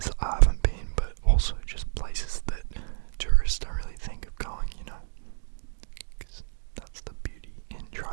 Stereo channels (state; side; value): silent; left; digital silence